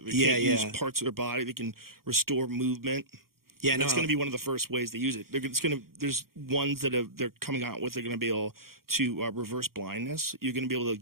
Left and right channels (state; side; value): late; left; 0.93 ms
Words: can't use parts of their body. They can restore movement. Yeah, that's going to be one of the first ways they use it. There's ones that they're coming out with. They're going to be able to reverse blindness. You're going to be able to